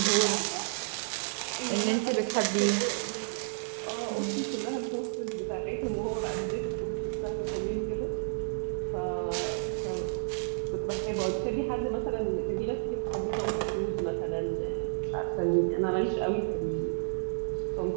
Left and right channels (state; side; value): silent; left; digital silence